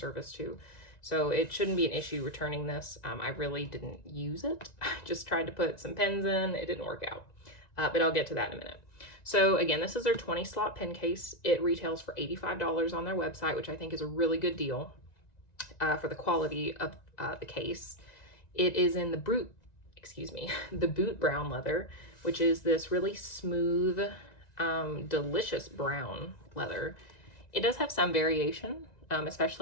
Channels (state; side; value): late; right; 1.9 ms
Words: too. So it shouldn't be an issue returning this. I really didn't use it. I just tried to put some pens in. It didn't work out, but I'll get to that in a minute. So again, this is their 20 slot pen case. It retails for $85 on their website, which I think is a really good deal for the quality of the case. It is in the the boot brown leather, which is this really smooth, delicious brown leather. It does have some variation.